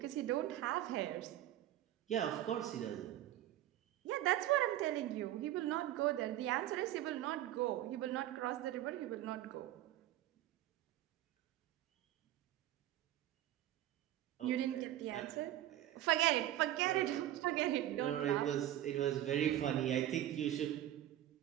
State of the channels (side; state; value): left; quieter; 13.2 dB